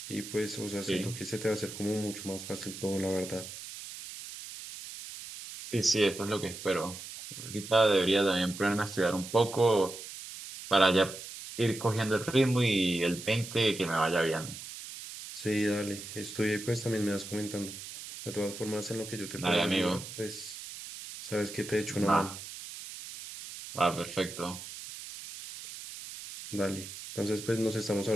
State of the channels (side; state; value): right; noise; hiss, 11 dB below the sound